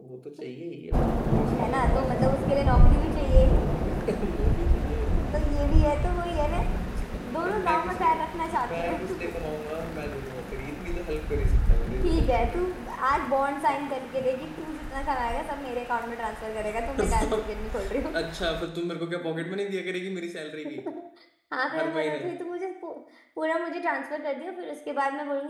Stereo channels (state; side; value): identical; both; correlation 1.00